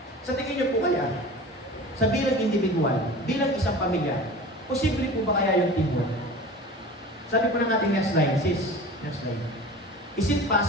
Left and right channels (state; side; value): normal; both; correlation 0.37